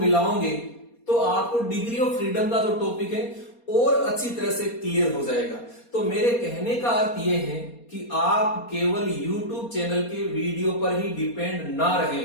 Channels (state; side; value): late; right; 4.2 ms